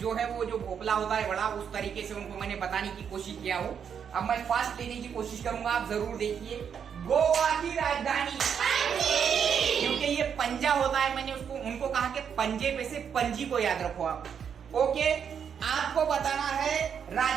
है वो जो भोपला होता है बड़ा, उस तरीके से उनको मैंने बताने की कोशिश किया हूं। अब मैं फास्ट लेने की कोशिश करूंगा, आप जरूर देखिए। गोवा की राजधानी, क्योंकि ये पंजा होता है, मैंने उनको कहा कि पंजे पे से पंजी को याद रखो आप। ओके, आपको बताना है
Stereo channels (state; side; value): quieter; left; 7.6 dB